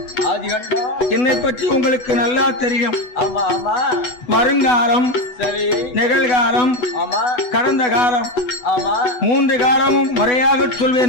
ஆதிகண்டம் என்னை பற்றி உங்களுக்கு நல்லா தெரியும். ஆமா ஆமா வருங்காலம், சரி நிகழ்காலம், ஆமா கடந்த காலம், ஆமா 3 காலமும் முறையாக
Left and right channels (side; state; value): right; late; 8.1 ms